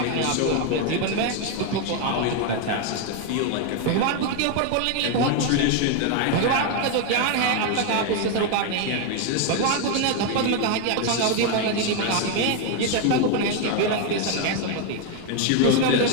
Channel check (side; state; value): both; different; correlation 0.01